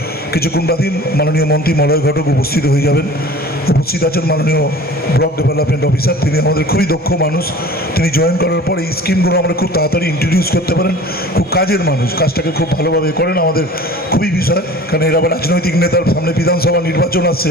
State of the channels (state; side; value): normal; both; correlation 0.43